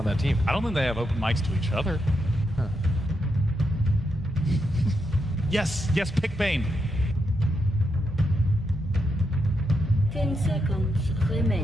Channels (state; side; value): normal; both; correlation 0.83